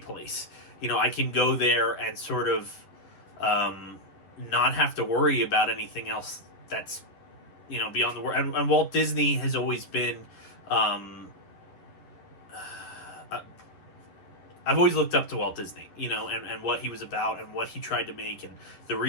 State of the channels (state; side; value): late; right; 10 ms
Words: I can go there and sort of not have to worry about anything else that's, beyond the world. And Walt Disney has always been I've always looked up to Walt Disney, you know, and what he was about and what he tried to make and the